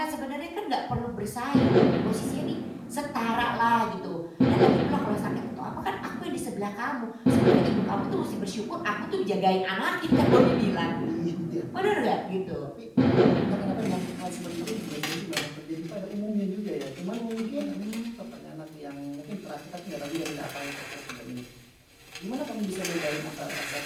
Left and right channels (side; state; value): both; identical; correlation 1.00